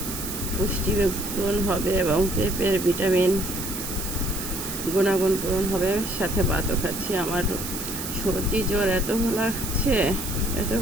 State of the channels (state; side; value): noise; right; hiss, 7 dB below the sound